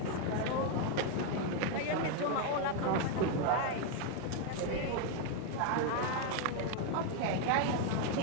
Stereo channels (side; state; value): both; different; correlation 0.01